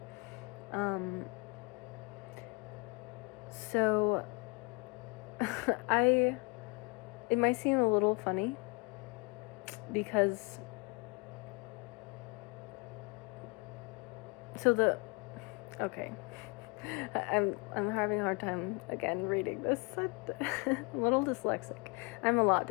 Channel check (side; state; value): right; quieter; 29.2 dB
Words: So it might seem a little funny because okay. I'm having a hard time again reading this. I'm a little dyslexic. I'm a lot